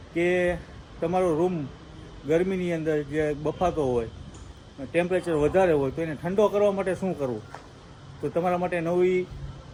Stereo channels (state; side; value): identical; both; correlation 1.00